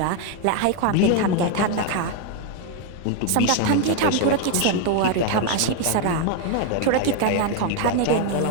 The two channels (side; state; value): both; different; correlation 0.01